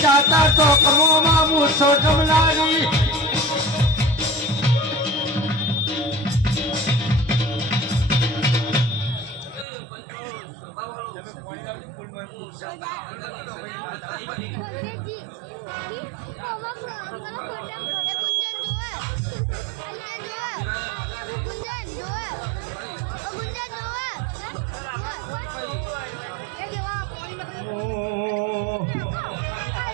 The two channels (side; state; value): left; drops out; at 9.7 s